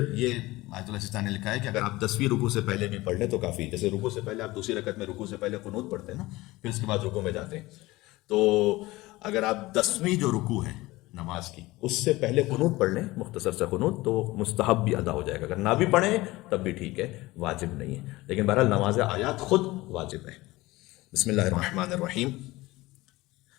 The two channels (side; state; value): right; quieter; 19.7 dB